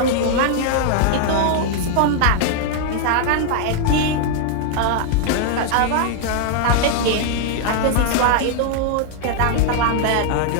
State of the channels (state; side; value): different; both; correlation 0.00